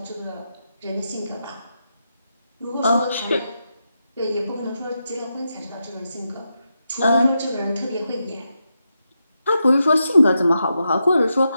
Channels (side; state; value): both; inverted; correlation -0.86